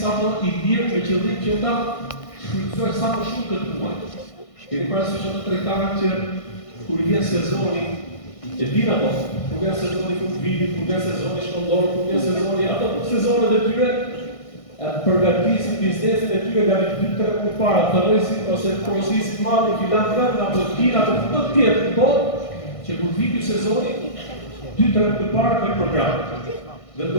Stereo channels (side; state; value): right; late; 1.6 ms